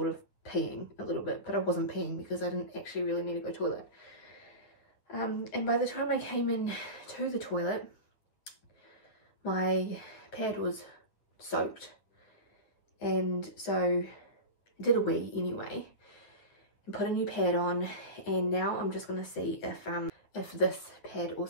of peeing a little bit, but I wasn't peeing because I didn't actually really need to go to the toilet. And by the time I came in to the toilet, my pad was soaked, and so I did a wee anyway and put a new pad on, and now I'm just going to see if this pad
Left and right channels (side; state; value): right; late; 9.8 ms